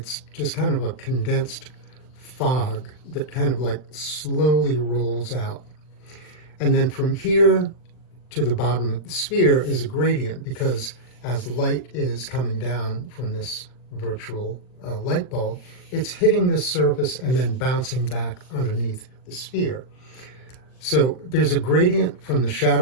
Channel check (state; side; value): late; right; 39 ms